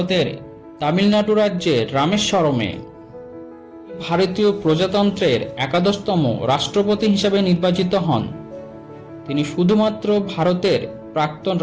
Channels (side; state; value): both; identical; correlation 1.00